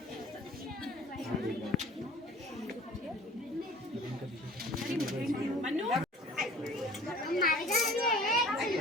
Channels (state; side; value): normal; both; correlation 0.48